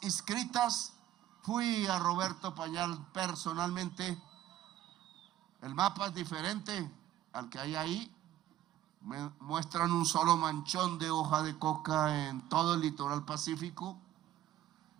inscritas. Fui a Roberto Pañal personalmente. El mapa es diferente al que hay ahí. Me muestran un solo manchón de hoja de coca en todo el litoral pacífico,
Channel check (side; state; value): left; quieter; 12.9 dB